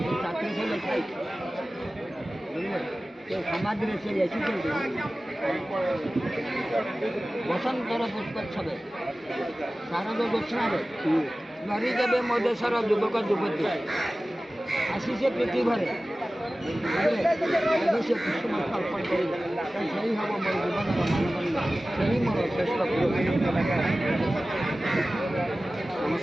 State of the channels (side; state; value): both; normal; correlation 0.96